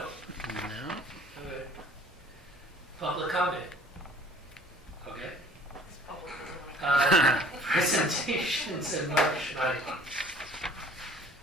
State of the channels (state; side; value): normal; both; correlation 0.52